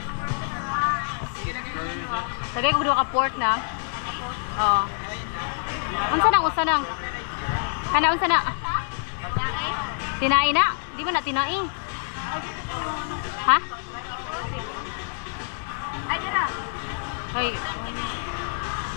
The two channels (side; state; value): right; silent; digital silence